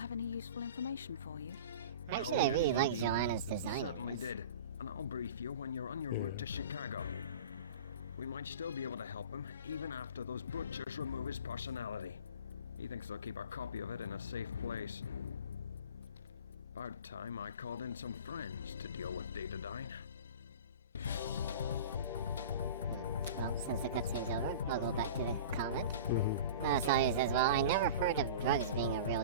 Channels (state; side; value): inverted; both; correlation -0.37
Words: any useful information for you? Actually, I really like Joanna's design. Certainly did, and I'll brief you when you're on your route to Chicago. We might still be able to help him, even after those butchers remove his personality. He thinks they'll keep a copy of it in a safe place. About time I called in some friends to deal with Datadyne. Well, since the cutscene's over, I'll go back to the comment. Sawyer says, well, I never heard of drugs being a